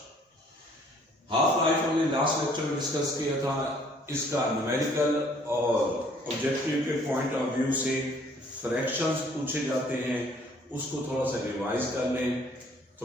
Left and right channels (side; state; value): both; normal; correlation 0.59